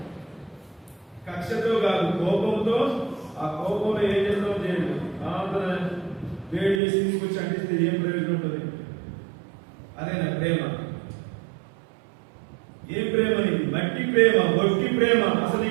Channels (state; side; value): drops out; left; at 6.8 s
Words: కక్షతో కాదు, కోపంతో. ఆ కోపంలో ఏం చేస్తాం చేయండి. వేడి చేసి తీసుకొచ్చి అంటిస్తే ఏం ప్రయోజనం ఉంటుంది? అదేనా ప్రేమ? ఏం ప్రేమ నీది? మట్టి ప్రేమ, ఒట్టి ప్రేమ. అసలు